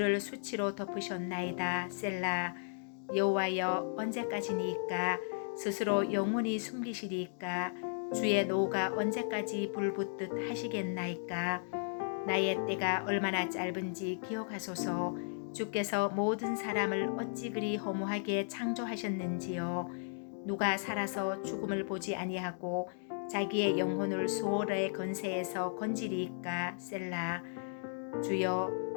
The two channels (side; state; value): right; silent; digital silence